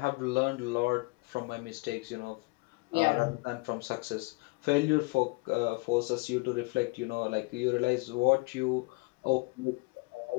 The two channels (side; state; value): right; quieter; 26.8 dB